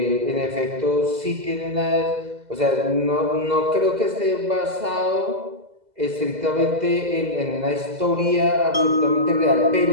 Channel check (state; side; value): late; left; 2.0 ms